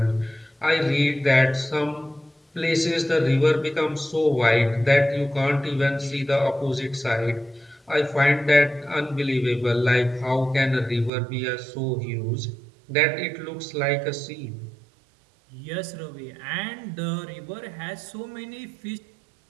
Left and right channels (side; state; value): left; drops out; at 11.1 s